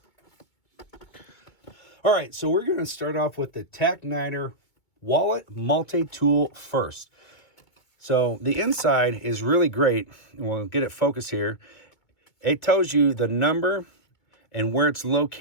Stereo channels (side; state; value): right; late; 2.2 ms